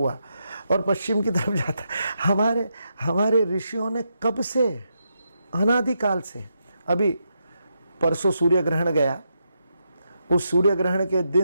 और पश्चिम की तरफ जाता है। हमारे ऋषियों ने कब से, अनादिकाल से, अभी परसों सूर्य ग्रहण गया, उस सूर्य ग्रहण के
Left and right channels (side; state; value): both; inverted; correlation -0.83